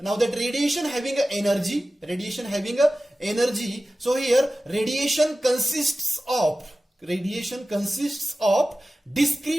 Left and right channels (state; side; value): normal; both; correlation 0.95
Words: that radiation having a energy, so here radiation consists of